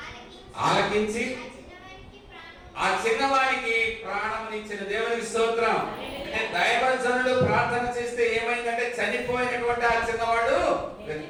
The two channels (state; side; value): identical; both; correlation 1.00